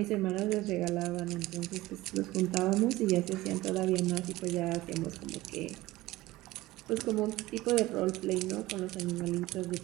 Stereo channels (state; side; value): quieter; left; 18.1 dB